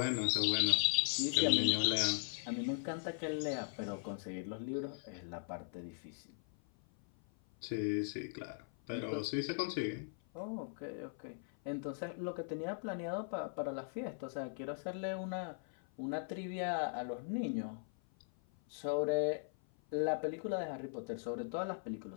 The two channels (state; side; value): silent; right; 52 dB below the other